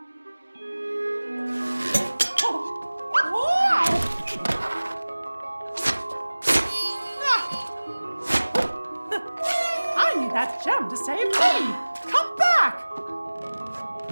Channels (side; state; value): both; inverted; correlation -1.00